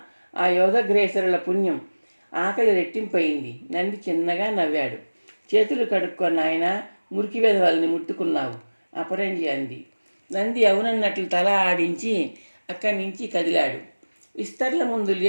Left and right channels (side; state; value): both; inverted; correlation -1.00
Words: ఆ యోధగ్రేసరుల పుణ్యం. ఆకలి రెట్టింపయింది. నంది చిన్నగా నవ్వాడు. చేతులు కడుక్కో నాయనా, మురికి వెధవల్ని ముట్టుకున్నావు, అపరంజి అంది. నంది అవునన్నట్లు తల ఆడించి అక్కడి నుంచి కదిలాడు. విస్తర్ల ముందు